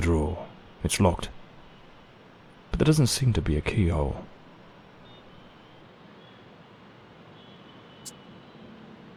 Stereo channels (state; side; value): identical; both; correlation 1.00